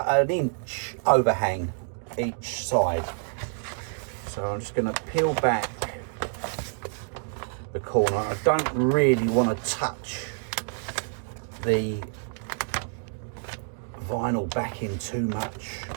an inch overhang each side. So I'm just going to peel back the corner. I don't really want to touch the vinyl backing too much,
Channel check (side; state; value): left; silent; 60 dB below the other